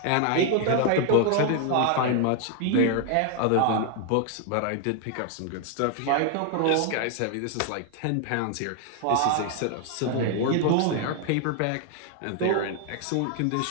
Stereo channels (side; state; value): both; different; correlation 0.00